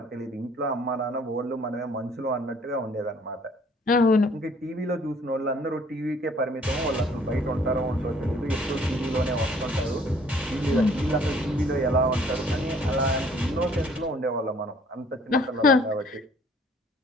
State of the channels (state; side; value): normal; both; correlation 0.58